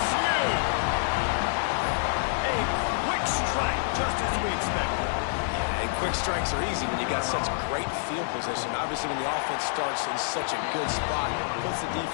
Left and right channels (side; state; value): right; silent; 59 dB below the other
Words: A quick strike, just as we expected. Yeah, and quick strikes are easy when you got such great field position. Obviously, when the offense starts in such a good spot, it puts the